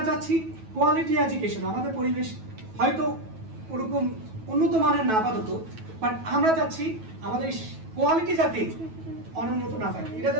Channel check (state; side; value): late; left; 9.2 ms